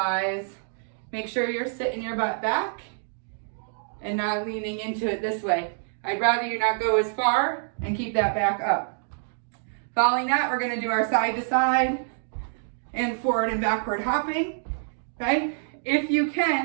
Make sure you're sitting your butt back and not leaning into it this way. I'd rather you not go as far and keep that back up. Following that, we're going to do our side to side and forward and backward hopping. Okay? If you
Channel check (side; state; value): left; silent; digital silence